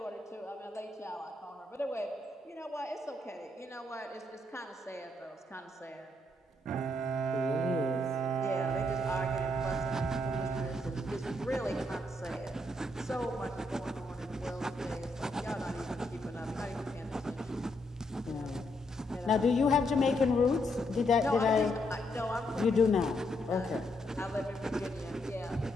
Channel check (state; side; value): normal; both; correlation 0.77